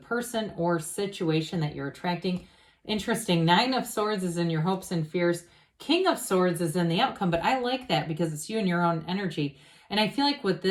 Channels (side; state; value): both; identical; correlation 1.00